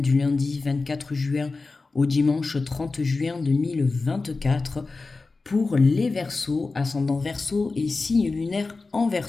du lundi 24 juin au dimanche 30 juin 2024 pour les Verseaux, ascendant Verseau et signe lunaire en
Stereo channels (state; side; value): quieter; right; 3.8 dB